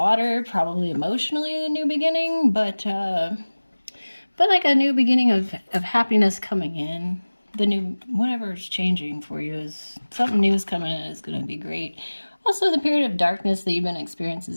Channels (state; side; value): inverted; both; correlation -1.00